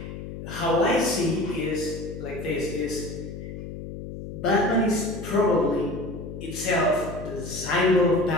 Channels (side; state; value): left; noise; hum, 9 dB below the sound